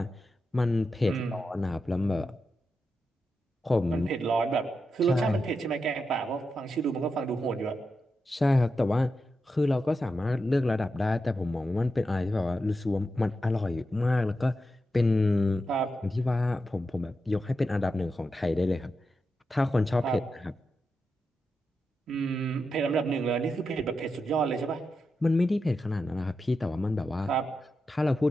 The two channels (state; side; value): normal; both; correlation 0.88